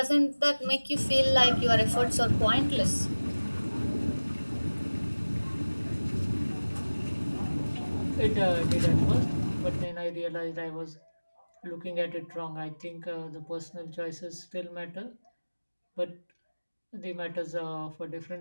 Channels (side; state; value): both; inverted; correlation -1.00